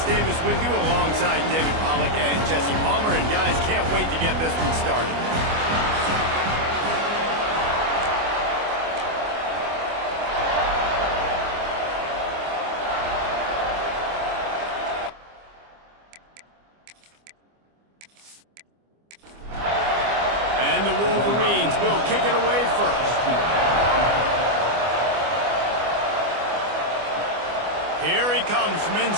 Davis with you alongside David Pollack and Jesse Palmer. And guys, can't wait to get this one started. And the Wolverines will kick it away first. Here he comes from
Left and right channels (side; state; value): left; late; 25 ms